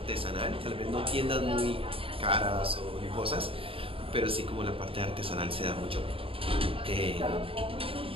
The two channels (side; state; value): left; late; 0.27 ms